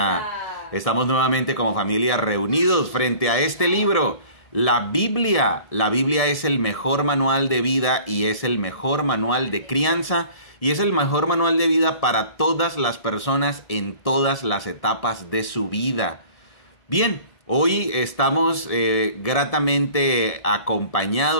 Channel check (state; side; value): late; right; 1.7 ms